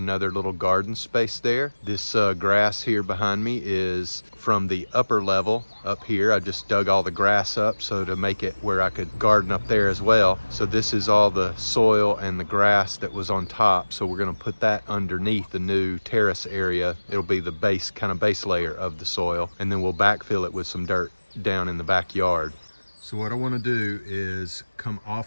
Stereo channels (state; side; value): inverted; both; correlation -1.00